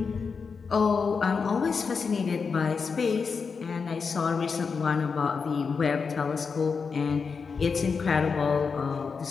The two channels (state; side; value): quieter; right; 5.3 dB